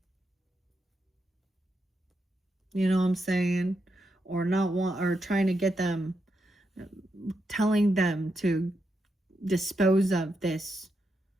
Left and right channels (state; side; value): normal; both; correlation 0.84